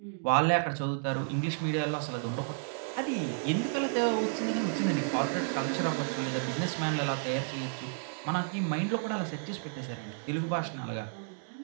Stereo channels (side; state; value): left; silent; digital silence